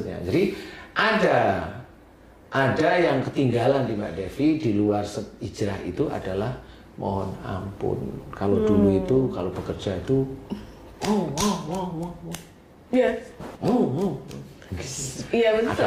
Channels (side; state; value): both; identical; correlation 1.00